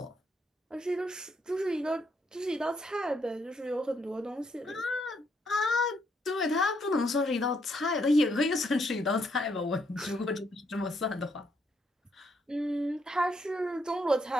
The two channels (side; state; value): both; normal; correlation 0.74